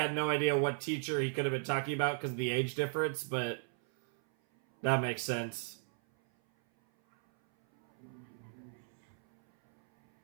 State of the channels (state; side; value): silent; left; 54 dB below the other